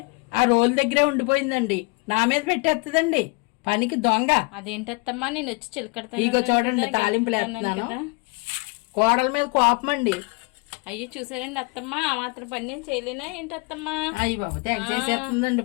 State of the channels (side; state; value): right; quieter; 29.8 dB